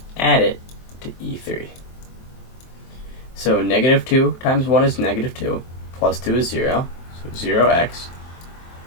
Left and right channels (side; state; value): right; late; 23 ms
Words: add it to E3. So -2 times 1 is -2, plus 2 is 0, so 0x.